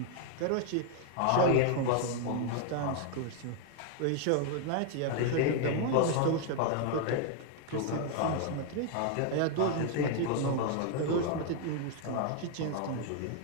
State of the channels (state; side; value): different; both; correlation 0.00